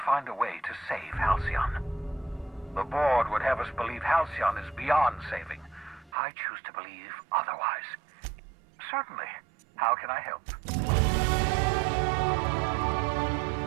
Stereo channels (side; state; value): left; drops out; at 6.1 s